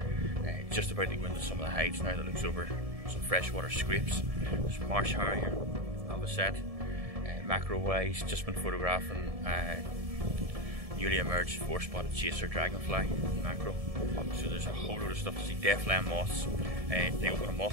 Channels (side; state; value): left; late; 1.7 ms